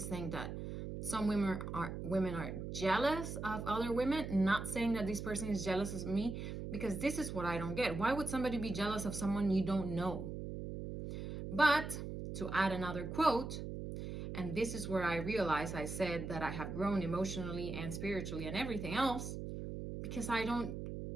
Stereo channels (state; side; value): noise; right; hum, 6 dB below the sound